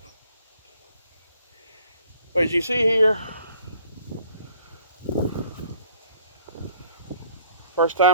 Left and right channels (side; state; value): both; inverted; correlation -0.60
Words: But as you see here, first